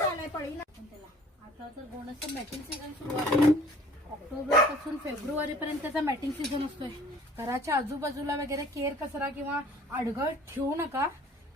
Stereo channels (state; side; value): normal; both; correlation 0.51